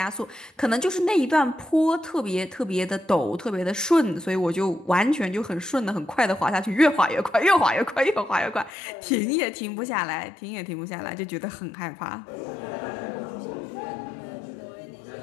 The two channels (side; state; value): right; drops out; at 8.7 s